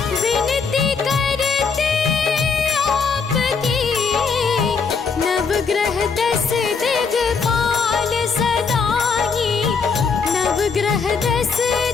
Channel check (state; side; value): quieter; right; 5.2 dB